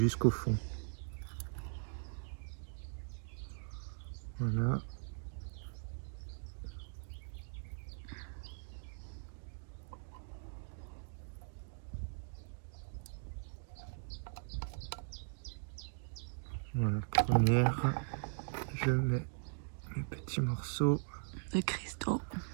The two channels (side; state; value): left; silent; digital silence